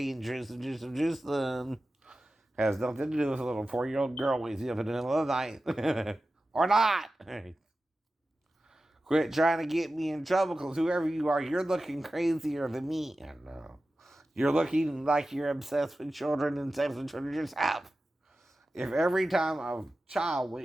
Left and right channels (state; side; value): normal; both; correlation 0.94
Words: Jerusalem, Jerusalem, Jerusalem, has nothing to do with a little 4-year-old girl waking up in the middle of the night. Or not. Quit trying to get me in trouble, because whoever you are, you're looking crazier than me. I know. You're looking like you're obsessed with children and sex with children yourself. If every time a child